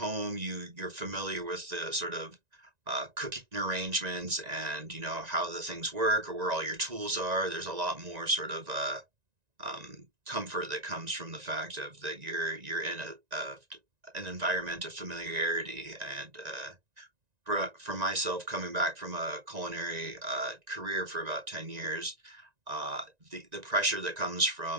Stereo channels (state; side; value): late; left; 1.9 ms